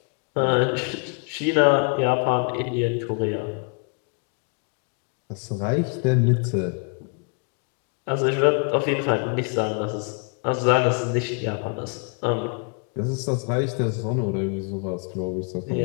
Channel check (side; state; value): right; quieter; 37.7 dB